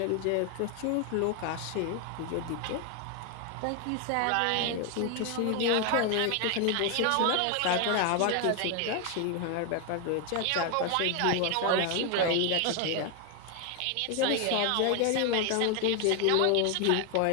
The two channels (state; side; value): different; both; correlation 0.01